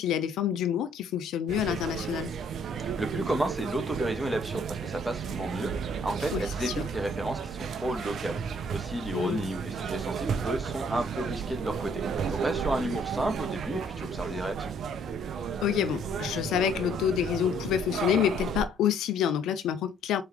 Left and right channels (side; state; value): both; normal; correlation 0.62